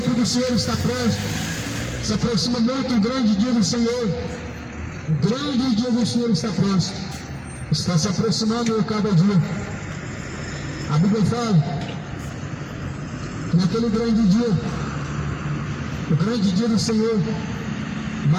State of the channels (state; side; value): identical; both; correlation 1.00